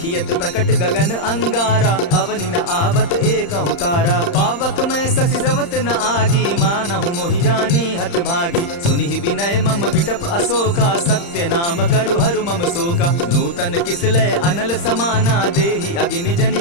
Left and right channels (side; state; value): right; late; 35 ms